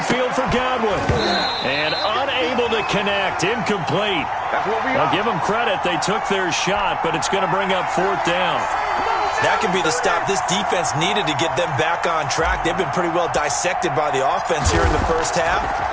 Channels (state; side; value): identical; both; correlation 1.00